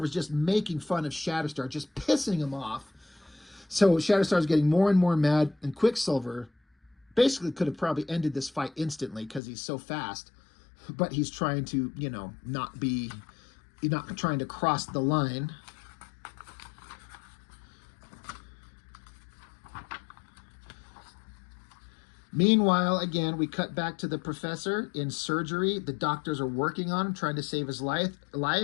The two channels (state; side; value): drops out; right; at 9.4 s